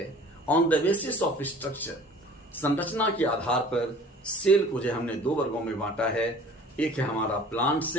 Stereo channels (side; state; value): both; normal; correlation 0.47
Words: on the basis of structure, संरचना के आधार पर सेल को जो हमने दो वर्गों में बांटा है। एक है हमारा प्लांट